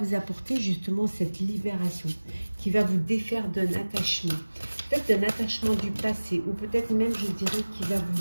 apporter justement cette libération, qui va vous défaire d'un attachement. Peut-être d'un attachement du passé, ou peut-être même, je dirais, qui va vous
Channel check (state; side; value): inverted; both; correlation -1.00